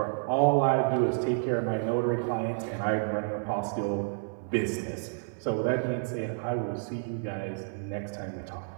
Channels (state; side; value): silent; left; 57 dB below the other